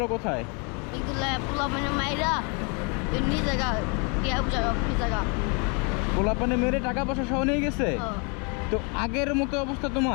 কোথায়? এগুলা পোলা মানে মাইরা এমনি জায়গা টিয়া জায়গা কি জায়গা পোলাপানে মেরে টাকা পয়সা সহ নিয়ে গেছে। তো আগের মতো অবস্থা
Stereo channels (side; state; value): right; quieter; 34.2 dB